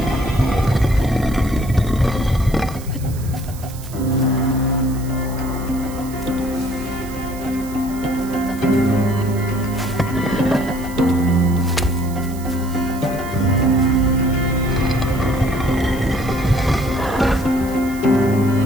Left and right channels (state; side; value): noise; right; hiss, 18 dB below the sound